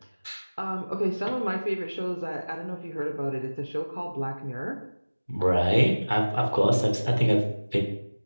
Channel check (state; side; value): inverted; both; correlation -1.00